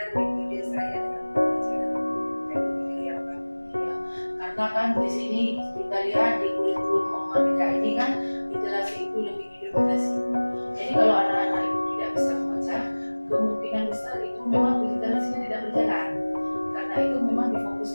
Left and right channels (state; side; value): inverted; both; correlation -1.00